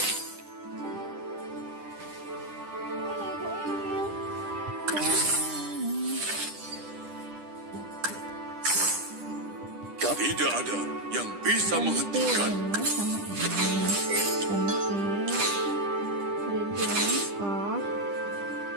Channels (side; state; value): left; late; 10 ms